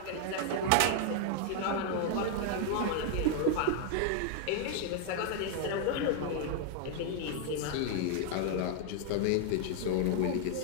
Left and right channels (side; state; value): both; different; correlation 0.00